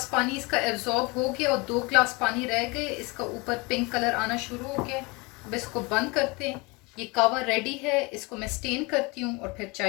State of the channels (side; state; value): right; quieter; 26.4 dB